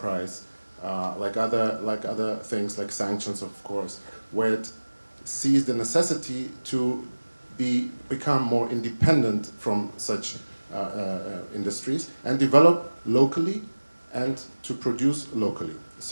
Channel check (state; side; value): inverted; both; correlation -1.00